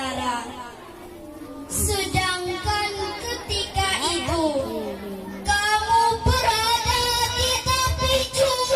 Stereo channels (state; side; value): identical; both; correlation 1.00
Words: Sedangkan ketika itu kamu berada di tepi